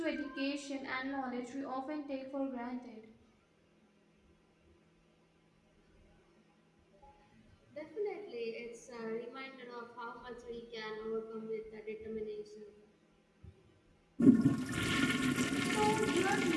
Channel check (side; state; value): both; identical; correlation 1.00